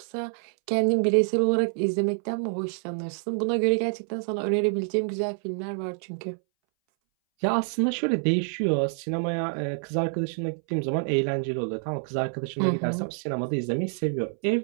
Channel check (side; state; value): left; silent; 60 dB below the other